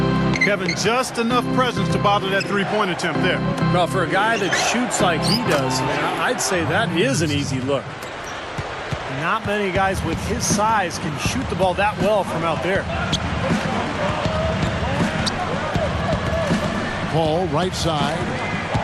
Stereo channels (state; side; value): identical; both; correlation 1.00